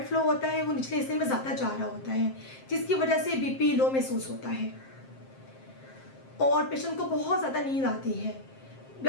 फ्लो होता है वो निचले हिस्से में ज़्यादा जा रहा होता है, जिसकी वजह से बीपी लो महसूस होता है और पेशेंट को बहुत ज़्यादा नींद आती है।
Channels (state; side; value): late; right; 7.6 ms